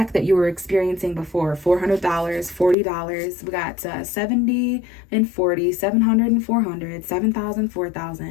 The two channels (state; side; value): drops out; right; at 2.8 s